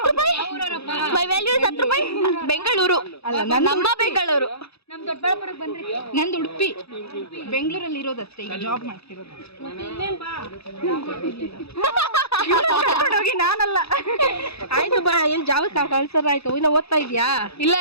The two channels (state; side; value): late; right; 0.78 ms